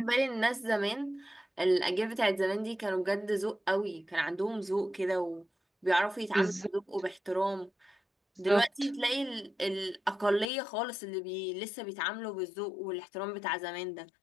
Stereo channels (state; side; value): drops out; right; at 10.5 s